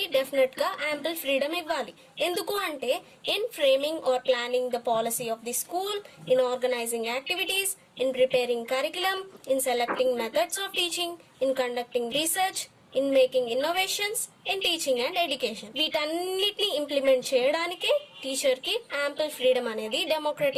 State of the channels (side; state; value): both; identical; correlation 1.00